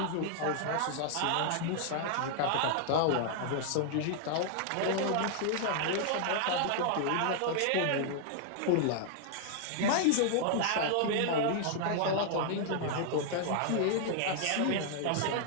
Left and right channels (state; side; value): different; both; correlation -0.01